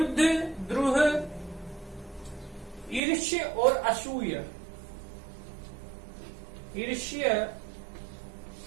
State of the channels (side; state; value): left; drops out; at 3.0 s